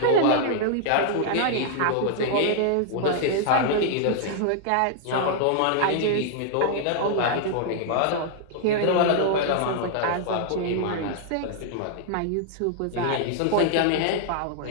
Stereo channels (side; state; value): both; different; correlation -0.01